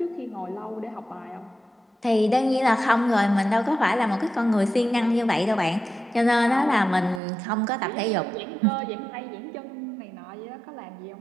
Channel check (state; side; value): drops out; left; at 7.2 s